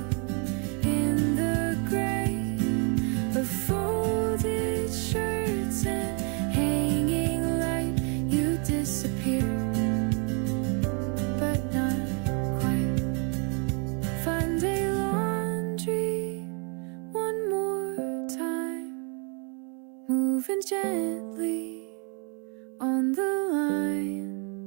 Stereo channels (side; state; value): left; quieter; 36.5 dB